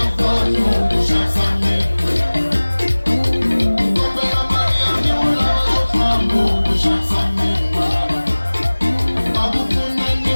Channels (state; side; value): inverted; both; correlation -1.00